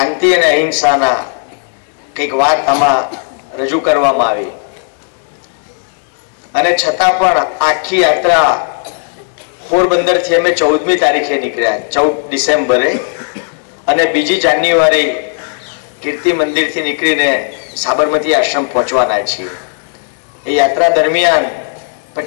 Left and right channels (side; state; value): right; silent; digital silence